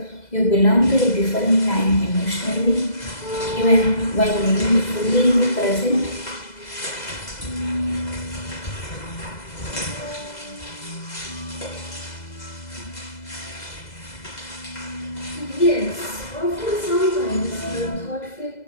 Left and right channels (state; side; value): late; right; 2.0 ms